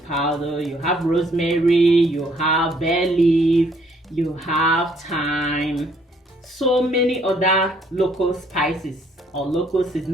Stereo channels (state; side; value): normal; both; correlation 0.65